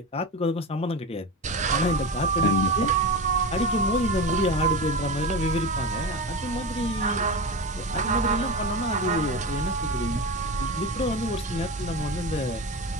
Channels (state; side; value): normal; both; correlation 0.24